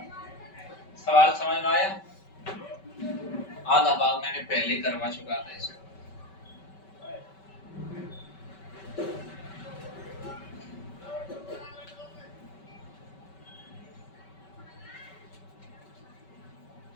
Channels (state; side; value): late; right; 5.2 ms